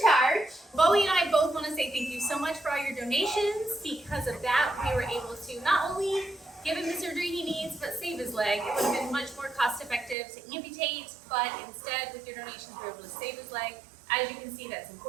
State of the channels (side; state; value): left; drops out; at 10.2 s